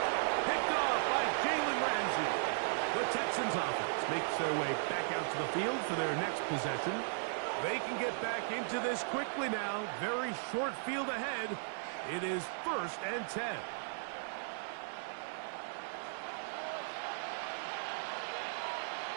Picked off by Jalen Ramsey. The Texans offense makes their way back out to the field for their next possession. They can get back into this quickly now. Very short field ahead. It is 1st and 10.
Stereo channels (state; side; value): silent; left; 53 dB below the other